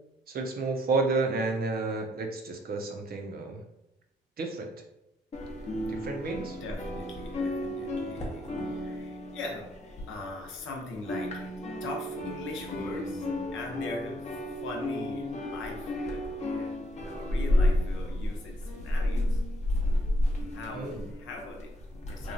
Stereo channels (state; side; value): normal; both; correlation 0.70